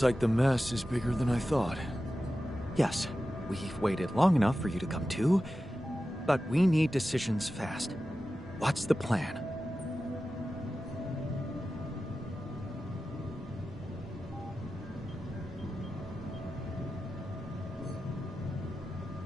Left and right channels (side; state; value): both; normal; correlation 0.93